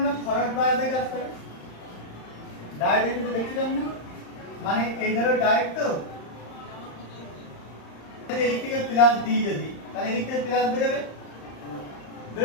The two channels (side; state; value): right; late; 35 ms